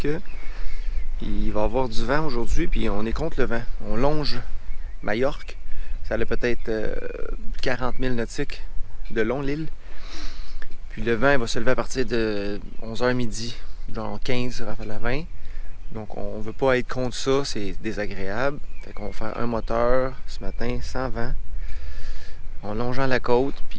il va y avoir du vent aujourd'hui, puis on est contre le vent. On longe Majorque. Ça a peut-être 40 000 nautiques de long l'île. Puis le vent il va se lever à partir de 11h midi, genre 15 à la 20. Donc on ne veut pas être contre ça, c'est désagréable. Fait qu'on va faire un moteur ce matin sans vent, en longeant la côte.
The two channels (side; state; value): both; identical; correlation 1.00